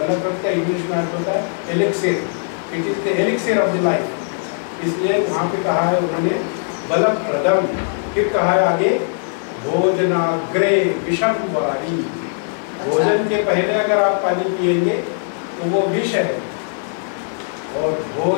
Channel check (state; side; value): silent; right; digital silence